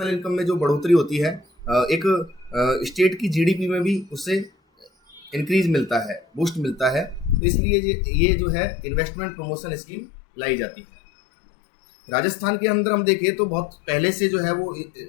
इनकम में जो बढ़ोतरी होती है, एक स्टेट की जीडीपी में भी उससे इंक्रीज मिलता है, बूस्ट मिलता है। तो इसलिए ये जो है इन्वेस्टमेंट प्रमोशन स्कीम लाई जाती है। राजस्थान के अंदर हम देखें तो बहुत पहले से जो है वो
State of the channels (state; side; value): drops out; right; at 7.4 s